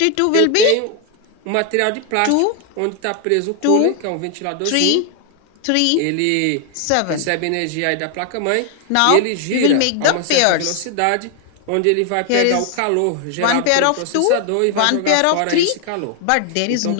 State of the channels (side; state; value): both; different; correlation 0.00